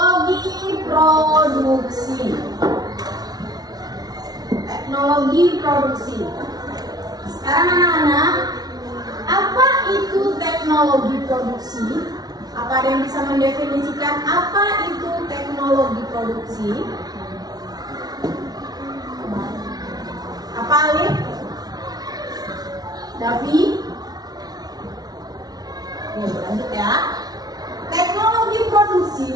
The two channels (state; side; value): late; left; 0.19 ms